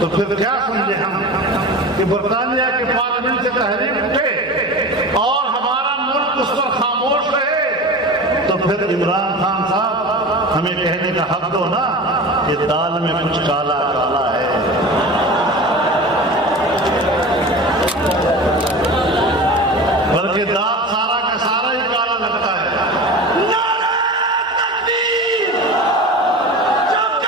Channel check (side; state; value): both; normal; correlation 0.32